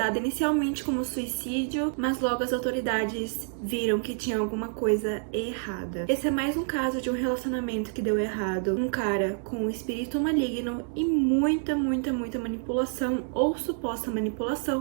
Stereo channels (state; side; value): silent; left; 59 dB below the other